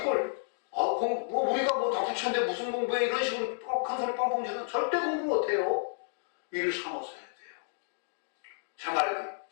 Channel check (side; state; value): right; silent; digital silence